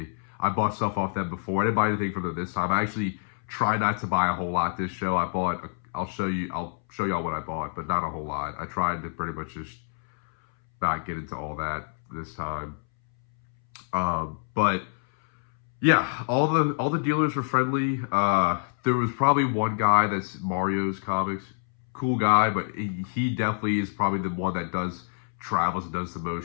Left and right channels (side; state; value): right; silent; 60 dB below the other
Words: I bought stuff off them before. I didn't buy anything from them this time. I actually try not to buy a whole lot this show. I'll show y'all what I bought, but not a whole lot. I tried to pretty much just not get into all that this time. But yeah, all the dealers were friendly. There was probably one guy that's Mario's Comics, cool guy, but he definitely is probably the one that travels and does the